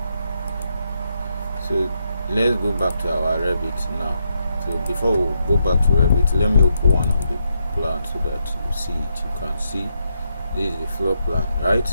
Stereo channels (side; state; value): both; inverted; correlation -0.80